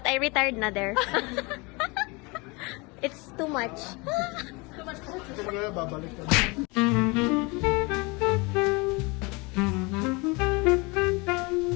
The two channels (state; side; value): quieter; right; 27.2 dB